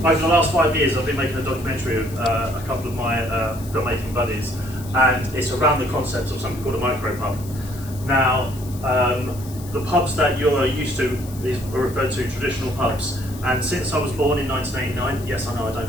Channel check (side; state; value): left; noise; hiss, 18 dB below the sound